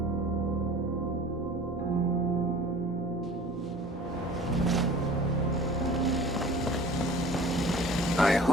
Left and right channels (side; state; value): both; normal; correlation 0.44